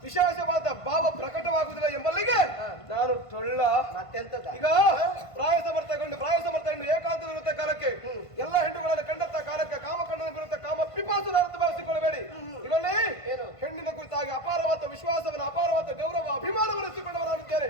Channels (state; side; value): late; right; 1.5 ms